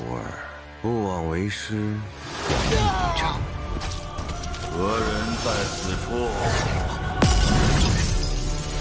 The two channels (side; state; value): both; identical; correlation 1.00